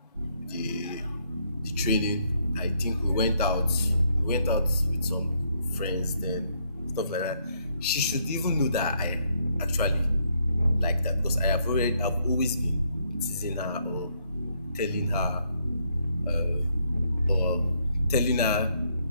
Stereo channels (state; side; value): inverted; both; correlation -0.72